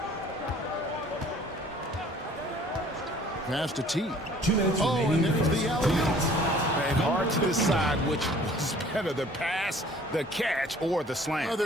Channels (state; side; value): normal; both; correlation 0.53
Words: Pass to T. 2 minutes Oh, and there's the alley-oop. And hard to decide which was better, the pass, the catch, or the slam. Oh,